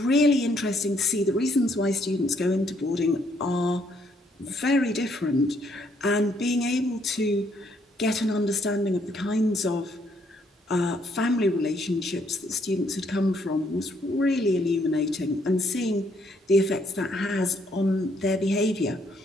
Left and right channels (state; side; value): normal; both; correlation 0.70